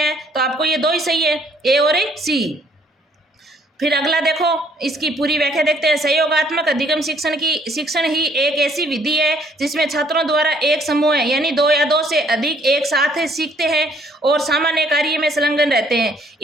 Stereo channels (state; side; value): normal; both; correlation 0.64